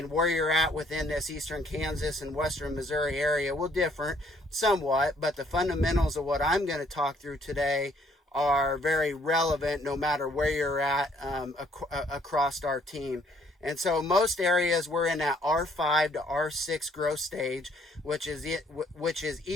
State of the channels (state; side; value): normal; both; correlation 0.64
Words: where you're at within this eastern Kansas and western Missouri area will differ somewhat, but the fundamentals of what I'm going to talk through today are very relevant no matter where you're at across our team. And so most areas we're in that R5 to R6 growth stage, which is